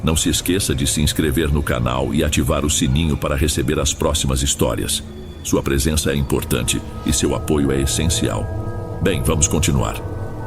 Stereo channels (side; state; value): both; identical; correlation 1.00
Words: não se esqueça de se inscrever no canal e ativar o sininho para receber as próximas histórias. Sua presença é importante e seu apoio é essencial. Bem, vamos continuar.